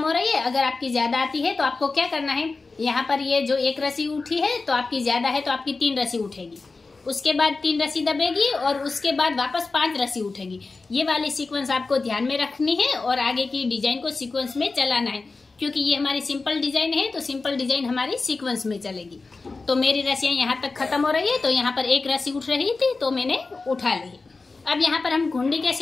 हो रही है। अगर आपकी ज्यादा आती है तो आपको क्या करना है, यहाँ पर ये जो 1 रस्सी उठी है तो आपकी ज्यादा है तो आपकी 3 रस्सी उठेगी, उसके बाद 3 रस्सी दबेगी और उसके बाद वापस 5 रस्सी उठेगी। ये वाली सीक्वेंस आपको ध्यान में रखनी है और आगे की डिजाइन को सीक्वेंस में चलाना है, क्योंकि ये हमारी सिंपल डिजाइन है तो सिंपल डिजाइन हमारी सीक्वेंस में चलेगी। तो मेरी रस्सियाँ यहाँ तक खत्म हो रही है। तो यहाँ पर 1 रस्सी उठ रही थी तो मैंने उठा ली। अब यहाँ पर हम घुंडी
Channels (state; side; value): quieter; right; 3.9 dB